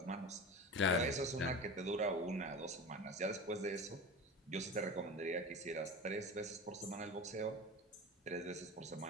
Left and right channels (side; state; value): both; normal; correlation 0.31